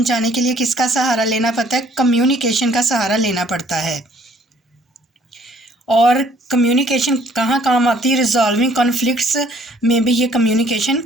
کے لیے کس کا سہارا لینا پڑتا ہے؟ کمیونیکیشن کا سہارا لینا پڑتا ہے۔ اور کمیونیکیشن کہاں کام آتی ہے؟ ریزالونگ کانفلکٹس میں بھی یہ کمیونیکیشن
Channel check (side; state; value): both; normal; correlation 0.61